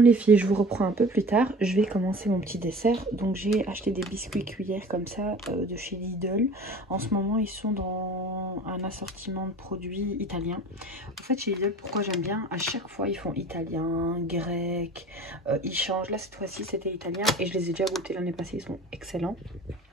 filles, je vous reprends un peu plus tard. Je vais commencer mon petit dessert. Donc j'ai acheté des biscuits cuillères comme ça de chez Lidl. En ce moment, ils sont dans un assortiment de produits italiens. En fait, chez Lidl, pourquoi j'aime bien, à chaque fois, ils font italien, grec. Ils changent. Là, cette fois-ci, c'était italien. Et je les ai déjà goûtés l'année passée. Ils sont excellents.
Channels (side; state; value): both; normal; correlation 0.41